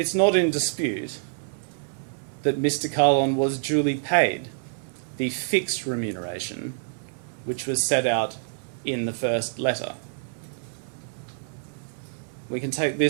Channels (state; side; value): silent; left; digital silence